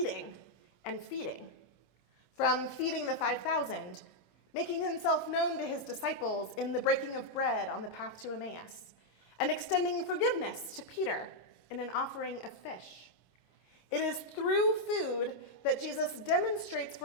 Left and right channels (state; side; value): late; right; 27 ms